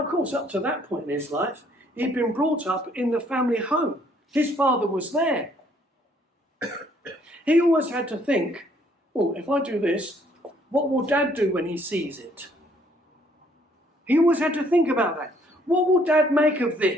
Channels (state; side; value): normal; both; correlation 0.64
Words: of course, up to that point in his life, he'd been brought up in the family home. His father was there. He always had to think, oh, if I do this, what will Dad do when he sees it? He always had to think about that. What will Dad make of